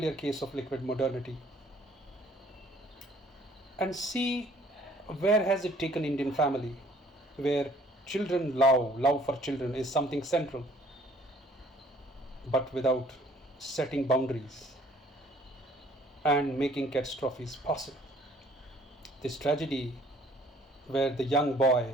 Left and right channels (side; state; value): both; normal; correlation 0.58